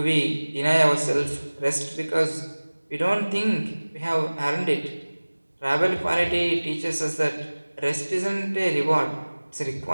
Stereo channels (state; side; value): inverted; both; correlation -1.00